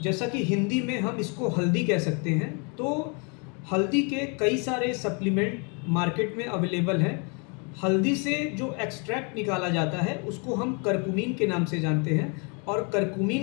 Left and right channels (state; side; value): quieter; right; 34.9 dB